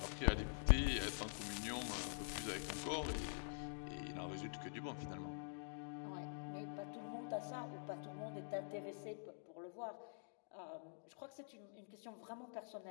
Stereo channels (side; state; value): right; silent; digital silence